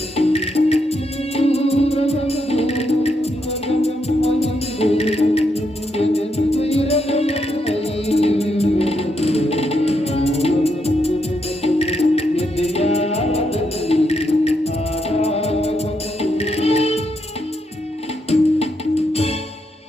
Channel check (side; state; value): both; normal; correlation 0.80